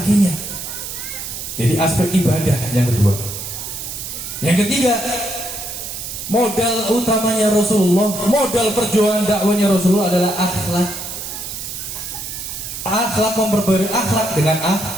Jadi aspek ibadah yang kedua. Yang ketiga, modal utamanya Rasulullah, modal perjuangan dakwanya Rasulullah adalah akhlak. Akhlak, memperbarui akhlak dengan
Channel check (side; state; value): right; noise; hiss, 7 dB below the sound